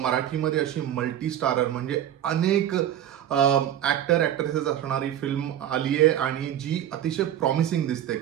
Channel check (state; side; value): quieter; left; 10.9 dB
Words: अशी मल्टी स्टारर म्हणजे अनेक ऍक्टर ऍक्ट्रेसेस असणारी फिल्म आली आहे आणि जी अतिशय प्रॉमिसिंग दिसते.